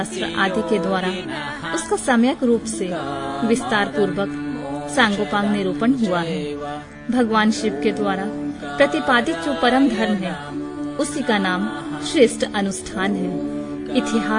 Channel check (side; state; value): both; identical; correlation 1.00